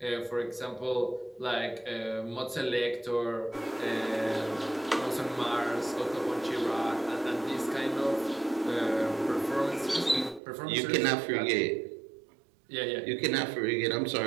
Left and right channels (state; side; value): drops out; left; at 10.4 s